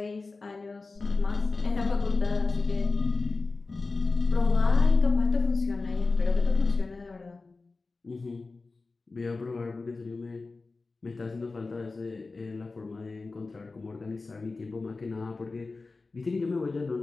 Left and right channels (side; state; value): right; quieter; 3.8 dB